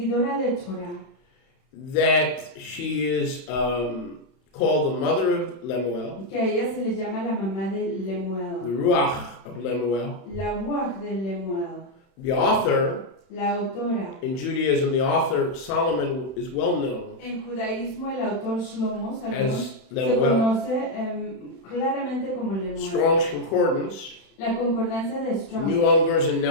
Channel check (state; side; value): late; right; 31 ms